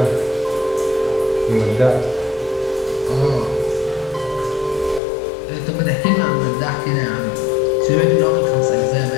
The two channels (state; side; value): drops out; right; at 5.0 s